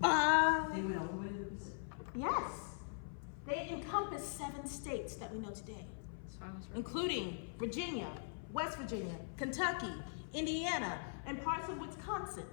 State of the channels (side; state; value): right; silent; 50 dB below the other